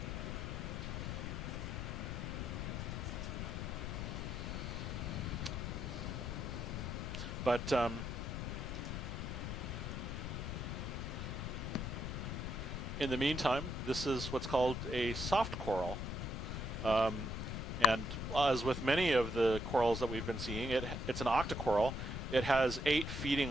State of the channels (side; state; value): left; noise; rumble, 4 dB below the sound